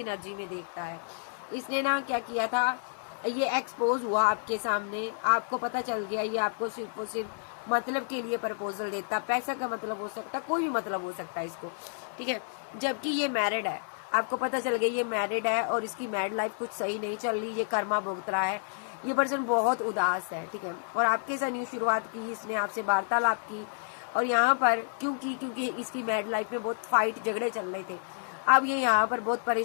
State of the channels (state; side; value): silent; right; 56 dB below the other